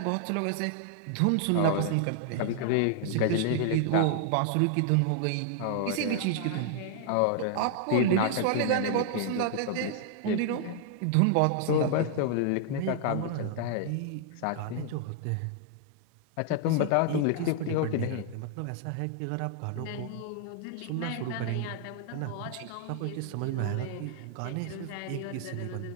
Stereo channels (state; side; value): different; both; correlation 0.00